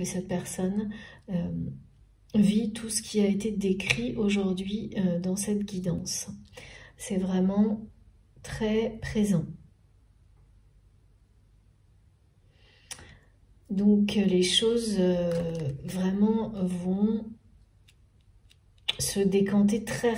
cette personne vit tout ce qui a été décrit aujourd'hui dans cette guidance. C'est vraiment très présent. Donc les choses vraiment vont se décanter très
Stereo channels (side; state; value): both; identical; correlation 1.00